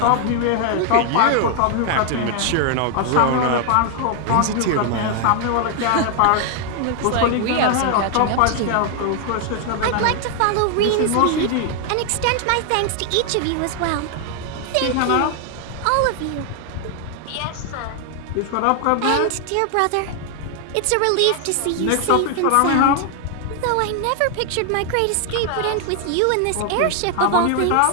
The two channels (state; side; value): different; both; correlation 0.00